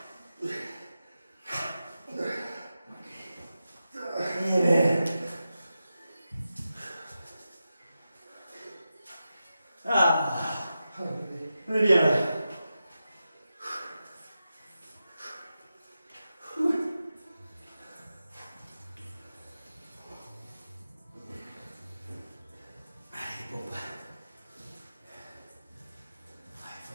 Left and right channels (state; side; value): inverted; both; correlation -0.91